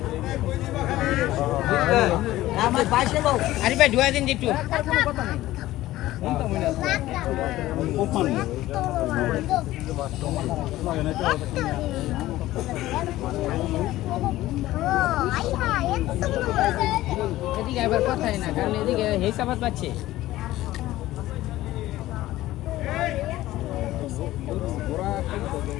আমার বাইকে দাও আরে ভাই ধুয়া দিন একটু এদিকে আবার কথাই না কারণ এদিকে হিসাবাত পাচ্ছে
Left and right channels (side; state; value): right; quieter; 15.9 dB